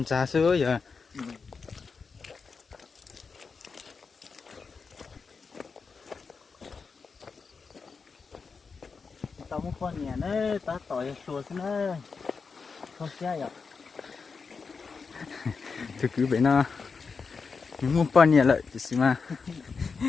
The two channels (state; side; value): quieter; right; 5.0 dB